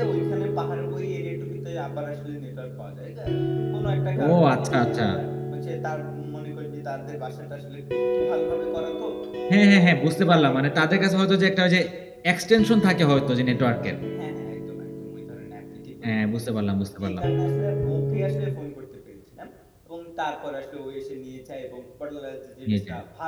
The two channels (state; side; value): identical; both; correlation 1.00